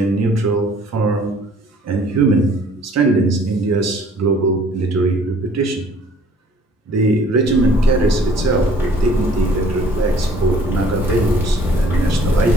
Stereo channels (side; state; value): both; normal; correlation 0.56